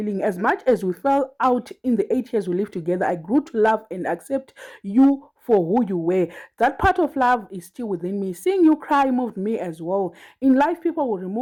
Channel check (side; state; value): both; identical; correlation 1.00